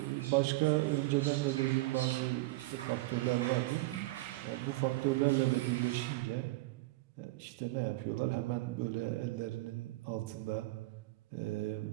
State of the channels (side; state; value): left; quieter; 20.5 dB